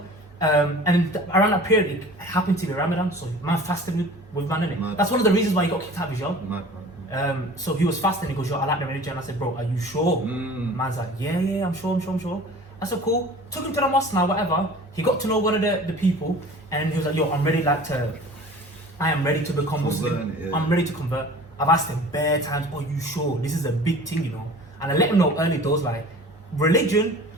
Around that period, it happened to be Ramadan, so man fasted with man, innit? Mad. That's one of the reasons why he got kicked out of his job. Mad. So he was fasting. He goes, yo, I like the religion. I said, bro, are you sure? Man's like, yeah, I'm sure. I said, cool. Took him to the mosque now, whatever. He got to know one of the people, and he was like, yo, I am ready to become Muslim. Yeah. I'm ready to convert. I've asked him bare times, are you sure? This is a big thing, you know. And I let him know early doors, like, religion,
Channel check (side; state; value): both; normal; correlation 0.43